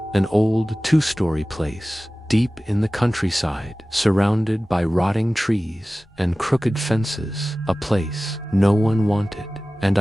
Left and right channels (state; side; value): normal; both; correlation 0.97